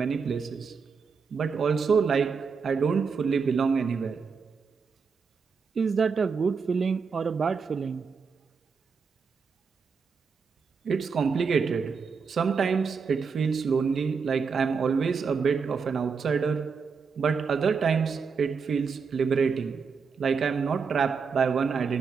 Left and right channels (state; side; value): quieter; left; 5.5 dB